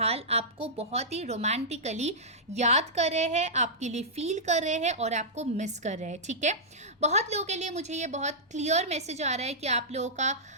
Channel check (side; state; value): both; normal; correlation -0.12